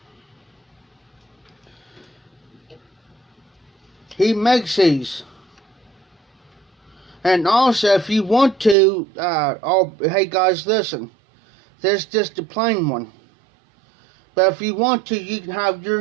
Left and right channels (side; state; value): left; drops out; at 8.8 s